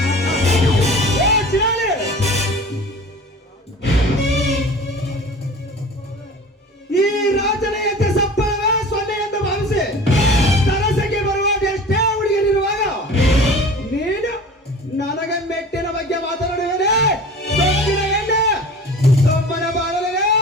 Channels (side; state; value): both; normal; correlation 0.40